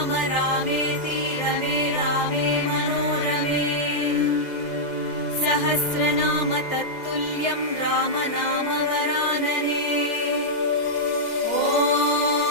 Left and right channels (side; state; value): right; late; 2.0 ms